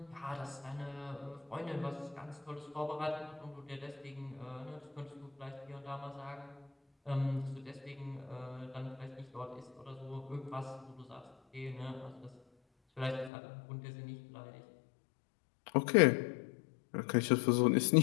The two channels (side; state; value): right; drops out; at 13.3 s